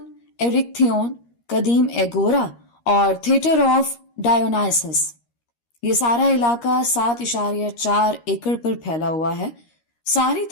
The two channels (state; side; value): late; right; 13 ms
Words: ایرکتھیون، قدیم ایگورا اور تھیٹر آف ڈایونائسس۔ یہ سارا علاقہ 7.4 ایکڑ پر پھیلا ہوا ہے۔ ساری